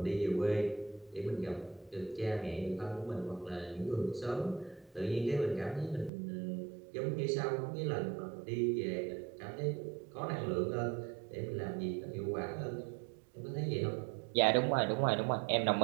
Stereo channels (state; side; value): drops out; left; at 6.1 s